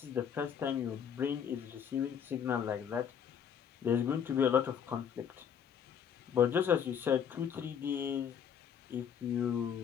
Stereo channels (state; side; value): quieter; right; 8.0 dB